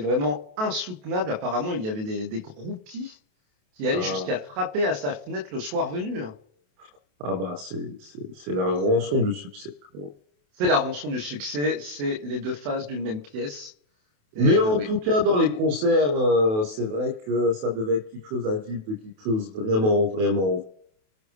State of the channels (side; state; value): left; late; 28 ms